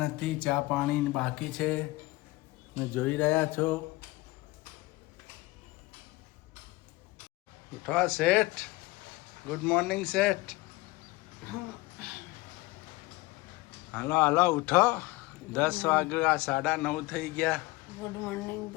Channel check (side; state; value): right; quieter; 21.2 dB